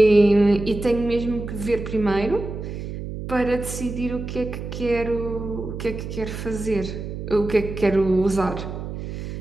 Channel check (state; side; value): noise; right; hum, 7 dB below the sound